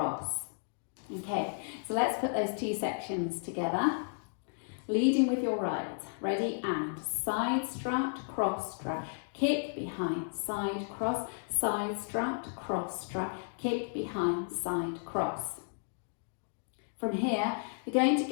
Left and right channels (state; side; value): silent; right; digital silence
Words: Okay, so let's put those two sections together. Leading with your right, ready, and side strut, cross strut, kick, behind, side, cross, side strut, cross strut, kick, behind, side, cross. From here, we're going to